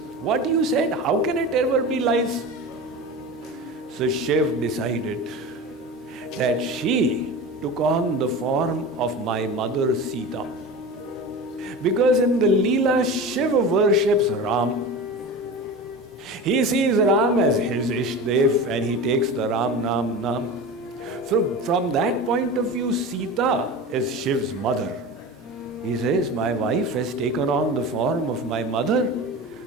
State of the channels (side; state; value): both; normal; correlation 0.30